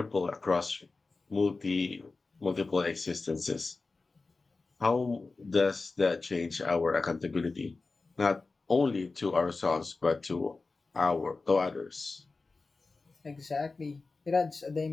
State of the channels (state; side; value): quieter; right; 3.8 dB